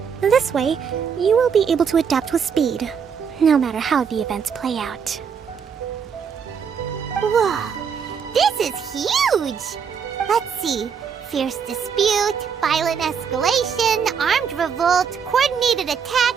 This way, you will be able to adapt with speed, no matter how the events play out. Whoa, this is huge! Let's see. Fierce dispute, violent escalation, armed revolt, coordinated attack,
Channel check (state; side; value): quieter; left; 6.8 dB